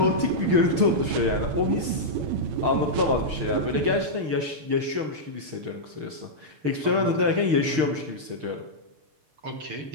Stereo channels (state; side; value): late; left; 6.5 ms